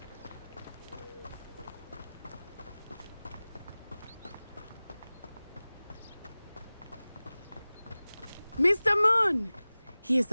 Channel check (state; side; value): inverted; both; correlation -0.98